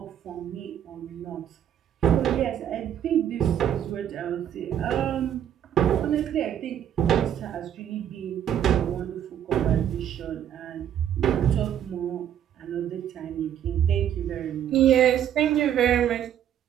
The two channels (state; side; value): quieter; left; 10.0 dB